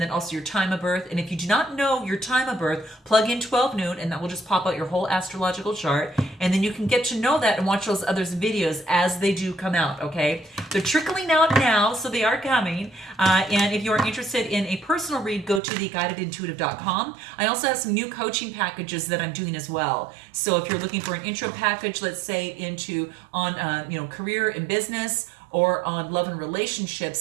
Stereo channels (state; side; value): drops out; left; at 15.6 s